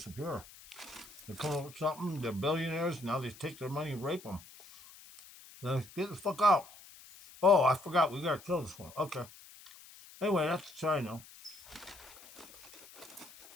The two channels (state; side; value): noise; left; hiss, 20 dB below the sound